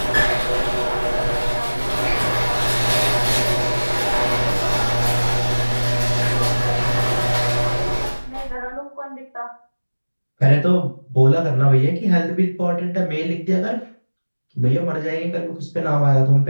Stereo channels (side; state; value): both; inverted; correlation -1.00